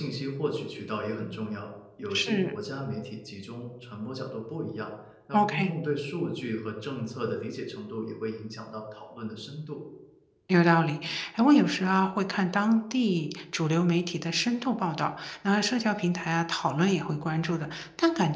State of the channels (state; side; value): identical; both; correlation 1.00